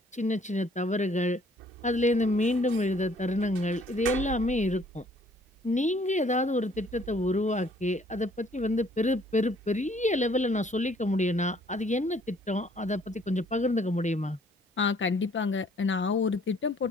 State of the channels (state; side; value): normal; both; correlation 0.60